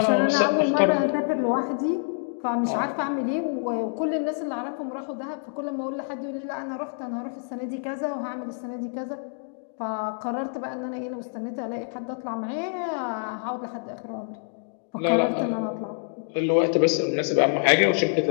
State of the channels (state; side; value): silent; right; digital silence